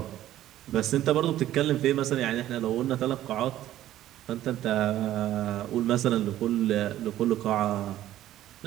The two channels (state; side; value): quieter; left; 13.3 dB